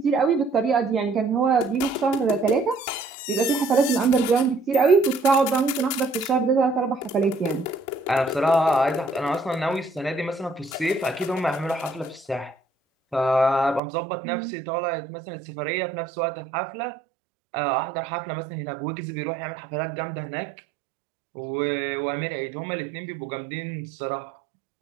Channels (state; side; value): drops out; left; at 13.8 s